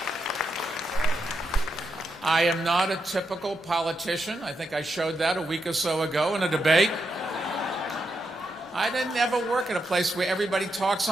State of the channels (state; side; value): normal; both; correlation 0.83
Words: I am not a typical politician. I think I showed that a week or so ago in a debate. I didn't ever work at a place where everybody talks